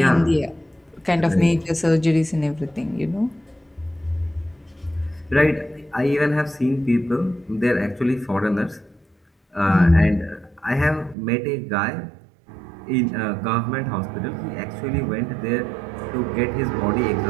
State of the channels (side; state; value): left; drops out; at 11.2 s